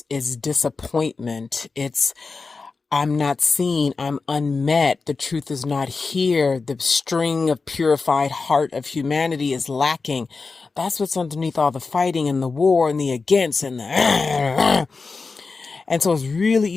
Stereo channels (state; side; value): quieter; right; 4.3 dB